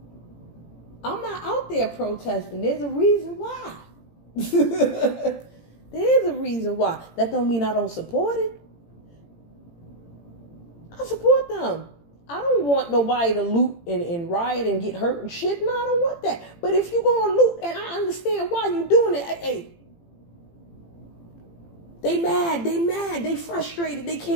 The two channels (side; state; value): right; late; 18 ms